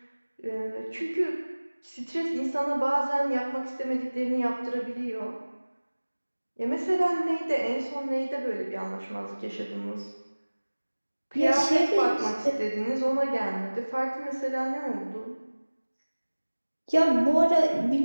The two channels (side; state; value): both; inverted; correlation -1.00